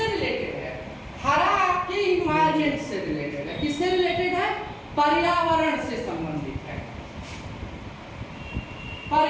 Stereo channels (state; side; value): identical; both; correlation 1.00